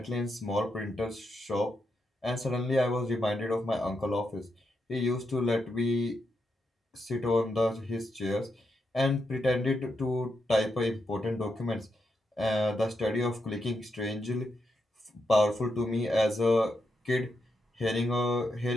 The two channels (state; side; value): normal; both; correlation 0.83